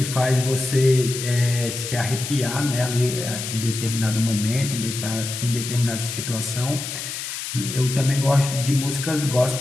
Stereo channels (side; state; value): left; noise; hiss, 6 dB below the sound